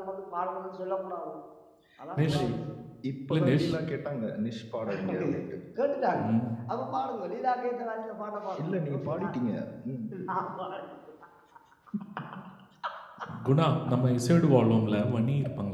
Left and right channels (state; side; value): identical; both; correlation 1.00